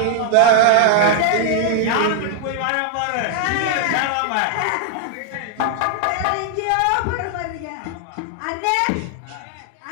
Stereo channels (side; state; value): both; different; correlation 0.00